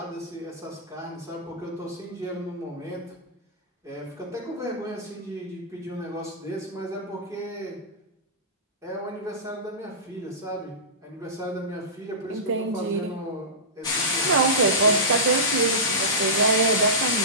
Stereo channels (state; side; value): normal; both; correlation -0.19